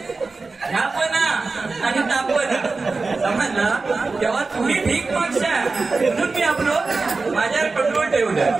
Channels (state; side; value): quieter; left; 3.9 dB